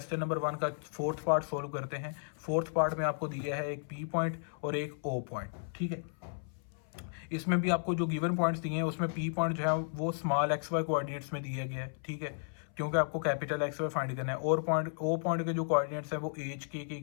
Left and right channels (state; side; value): silent; right; 55 dB below the other